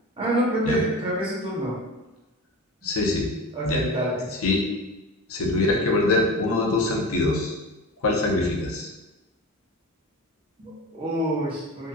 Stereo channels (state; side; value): normal; both; correlation 0.31